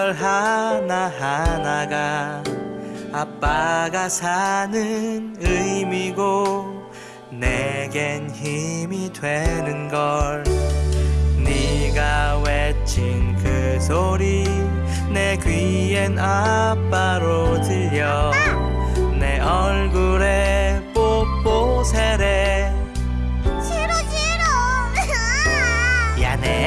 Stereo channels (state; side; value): identical; both; correlation 1.00